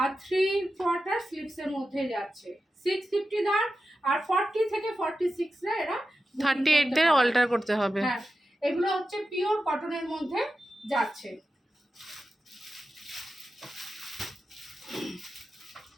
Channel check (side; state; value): both; normal; correlation 0.92